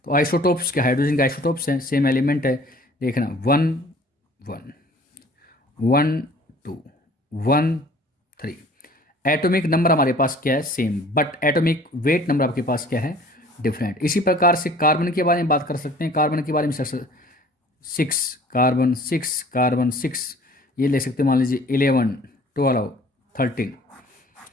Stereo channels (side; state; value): both; normal; correlation 0.51